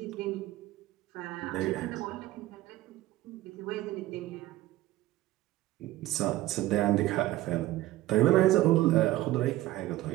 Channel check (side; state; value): left; quieter; 15.9 dB